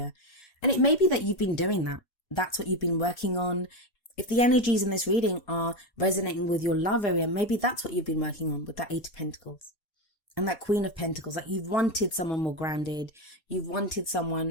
And it may be that you've been doing that. That's what you've been working on. If the energies in this reading are resonating with your love area, maybe that's what you've been working on with that Eight of Pentacles and that Queen of Pentacles. Like, you've wanted someone more grounded. You've wanted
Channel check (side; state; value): right; late; 4.2 ms